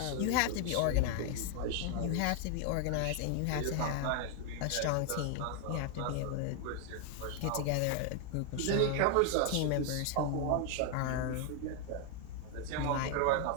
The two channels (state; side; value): different; both; correlation 0.00